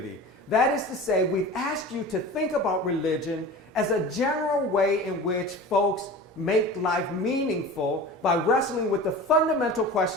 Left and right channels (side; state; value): both; normal; correlation 0.35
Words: That is to say, we've asked you to think about religion as a general way in which folks make life meaningful by wrestling with the fundamental